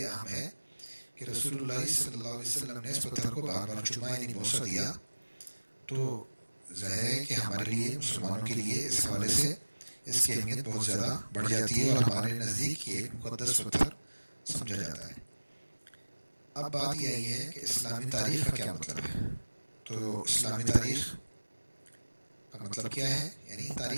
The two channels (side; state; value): both; inverted; correlation -1.00